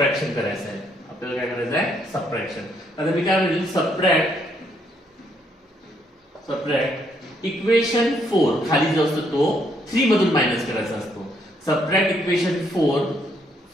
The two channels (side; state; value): both; normal; correlation 0.72